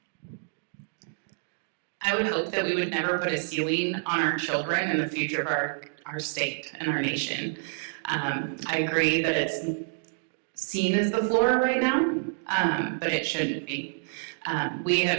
I would hope that we would never put a ceiling on our children and the future of our state and our nation. I agree that it's seen as the floor right now, but it shouldn't be. We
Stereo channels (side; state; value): left; silent; digital silence